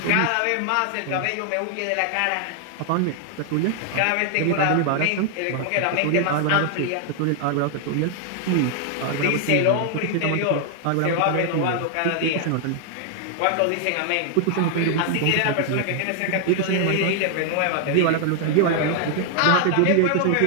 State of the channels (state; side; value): different; both; correlation 0.00